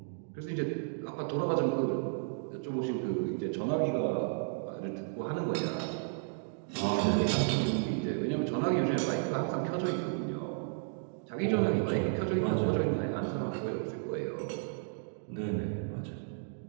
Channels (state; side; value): silent; left; digital silence